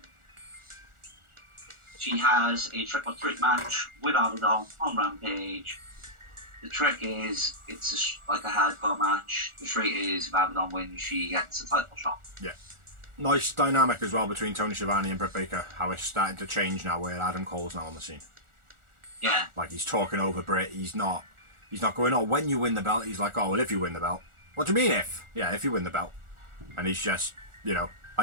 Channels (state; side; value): late; left; 1.4 ms